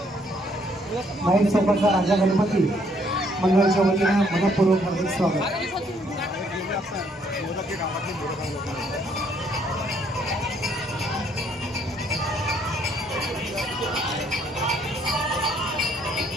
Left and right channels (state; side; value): normal; both; correlation 0.67